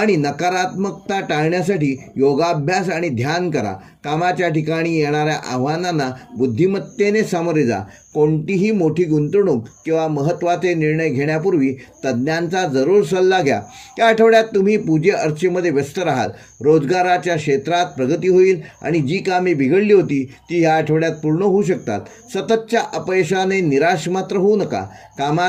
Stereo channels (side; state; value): both; identical; correlation 1.00